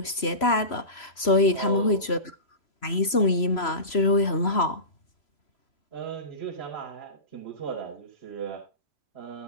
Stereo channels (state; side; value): late; right; 3.0 ms